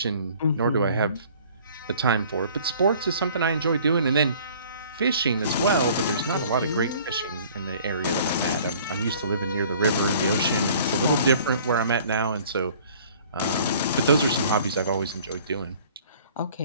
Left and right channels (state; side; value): inverted; both; correlation -0.52